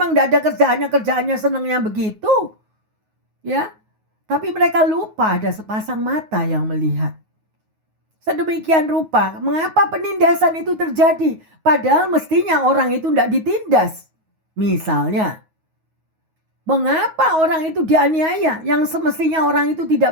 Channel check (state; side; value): late; left; 9.4 ms